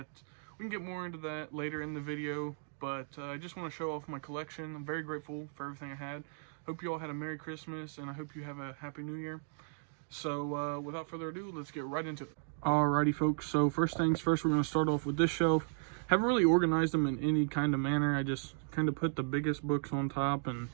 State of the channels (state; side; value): silent; left; digital silence